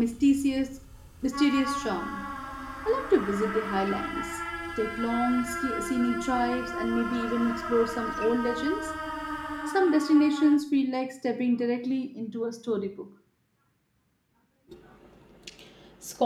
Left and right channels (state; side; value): identical; both; correlation 1.00